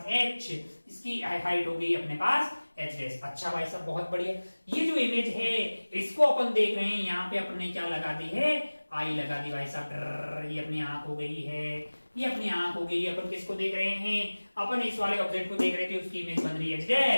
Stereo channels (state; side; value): inverted; both; correlation -1.00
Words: h, इसकी हाइट हो गई अपने पास h डैश। अच्छा भाई साहब बहुत बढ़िया। ये जो इमेज है इसको अपन देख रहे हैं, यहाँ पे अपने क्या लगा दी है, आई लगा दी भाई साहब। ये अपनी आंख हो गई है, ये अपनी आंख हो गई। अपन किसको देख रहे हैं, अपन इस वाले ऑब्जेक्ट को देख रहे थे, उसकी इमेज बन रही है h